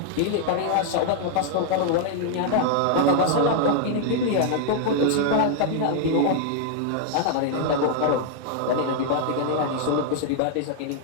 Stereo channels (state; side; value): different; both; correlation 0.00